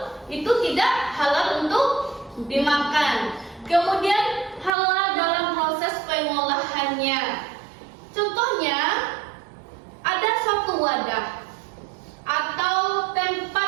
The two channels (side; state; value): left; drops out; at 4.7 s